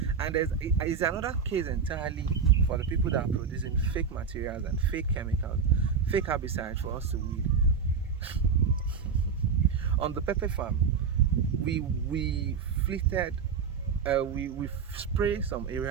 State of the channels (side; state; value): left; quieter; 6.1 dB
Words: And there's another case entirely for the people that are producing fake materials and fake chemicals, fake herbicides for us to weed. On the pepper farm, we spray some